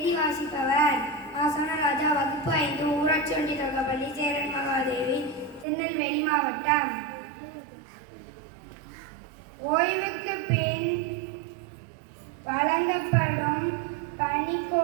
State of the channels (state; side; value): drops out; left; at 5.7 s